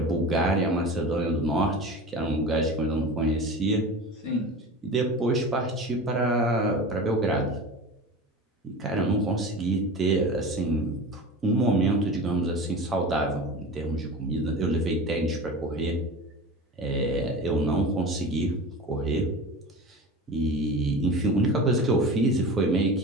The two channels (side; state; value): both; normal; correlation 0.32